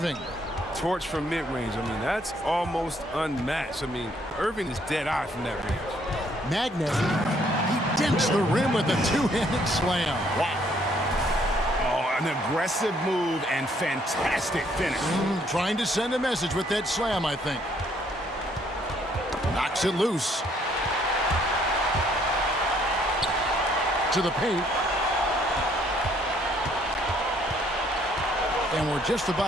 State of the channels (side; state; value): both; normal; correlation 0.66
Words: Torch from mid-range. I mean, that's almost unmatched. I mean, Irving is dead-eye from that range. Magnay, he dents the rim with a two-handed slam. Wow. Oh, an aggressive move and fantastic finish. Trying to send a message with that slam, I think. Knocks it loose. To the paint. And we're just